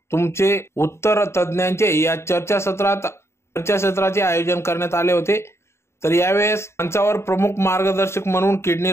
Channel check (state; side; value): late; right; 0.13 ms